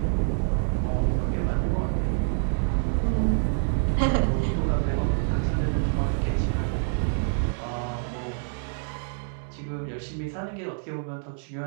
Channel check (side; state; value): left; silent; digital silence